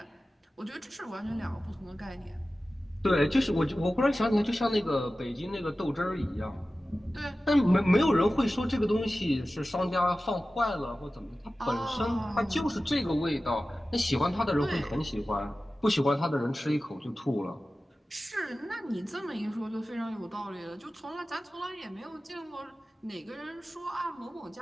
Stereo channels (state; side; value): normal; both; correlation 0.95